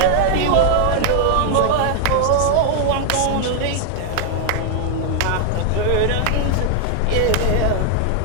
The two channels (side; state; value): both; different; correlation 0.00